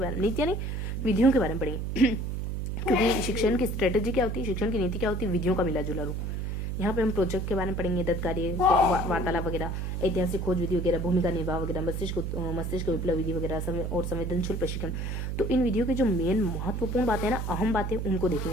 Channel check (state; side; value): noise; right; hum, 3 dB below the sound